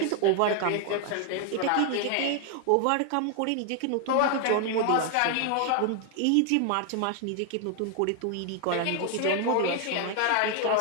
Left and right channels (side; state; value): both; different; correlation 0.00